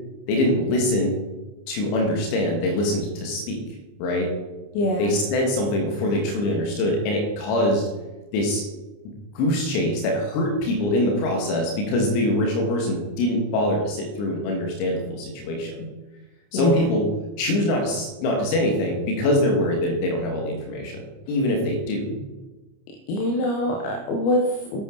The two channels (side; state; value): right; late; 30 ms